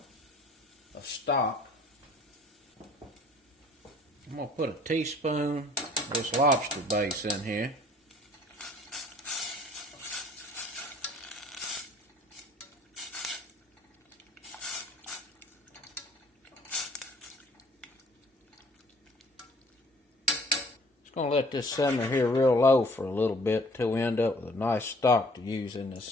stock. I'm going to put a teaspoon of this lobster base in here. Going to let this simmer here real low for a little bit till we end up with a nice stock to use in this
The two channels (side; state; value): both; normal; correlation 0.56